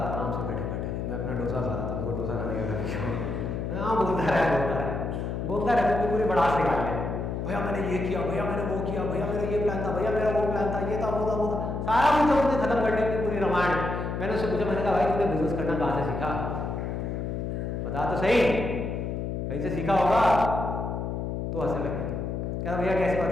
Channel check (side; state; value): left; noise; hum, 3 dB below the sound